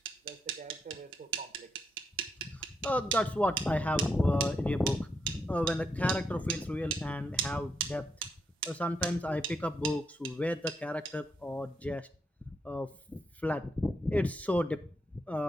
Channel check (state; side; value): normal; both; correlation 0.80